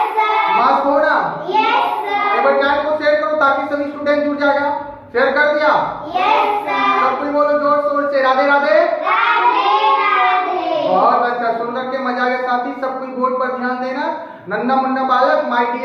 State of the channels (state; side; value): identical; both; correlation 1.00